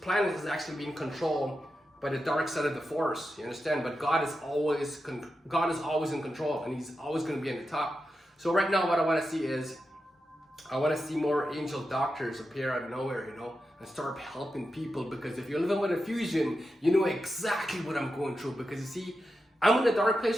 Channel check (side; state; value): both; normal; correlation 0.89